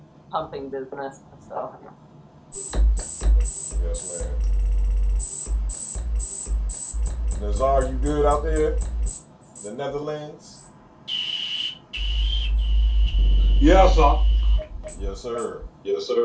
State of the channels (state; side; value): identical; both; correlation 1.00